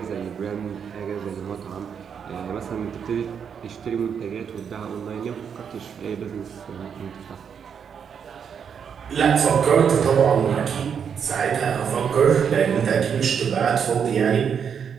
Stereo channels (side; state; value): left; quieter; 7.3 dB